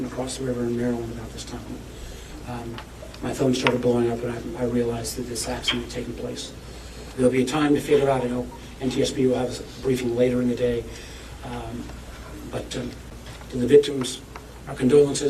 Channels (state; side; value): identical; both; correlation 1.00